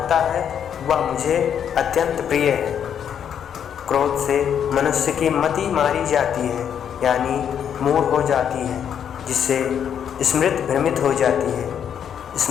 है, वह मुझे अत्यंत प्रिय है। क्रोध से मनुष्य की मति मारी जाती है, यानी मूढ़ हो जाती है, जिससे स्मृति भ्रमित हो जाती है।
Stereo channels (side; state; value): right; quieter; 8.6 dB